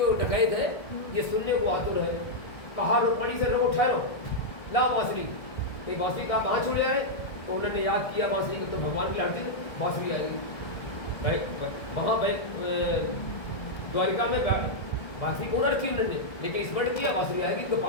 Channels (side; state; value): right; late; 1.7 ms